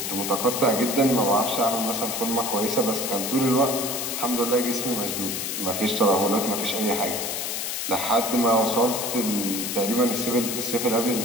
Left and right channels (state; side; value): noise; left; hiss, 3 dB below the sound